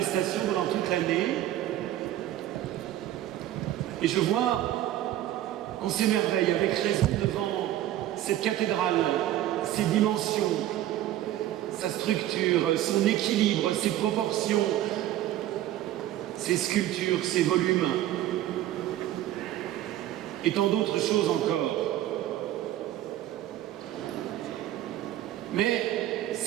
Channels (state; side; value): quieter; left; 13.4 dB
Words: pendant toute l'année. Et je vois qu'on s'émerveille avec raison devant cette cathédrale, ses dimensions, sa structure, son équilibre, ses proportions, ses sculptures, ses volumes, et tant d'autres choses encore. Mais